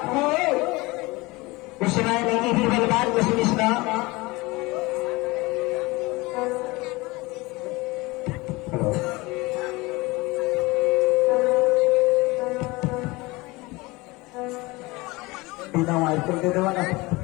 हो उस समय नहीं भी बलवान को सुनिश्ना बिना वायर कर दे देवा ना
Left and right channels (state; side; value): quieter; right; 22.8 dB